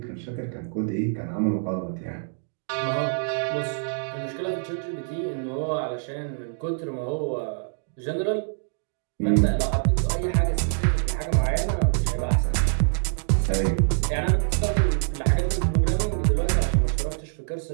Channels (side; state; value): left; silent; digital silence